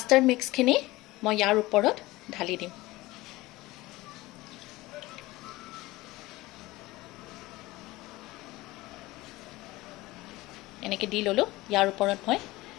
মিক্সখিনি মই ইয়াৰ ওপৰত ঢালি দিম। এনেকৈ দি ল'লোঁ। ইয়াৰ ওপৰত মই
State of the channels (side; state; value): right; quieter; 19.6 dB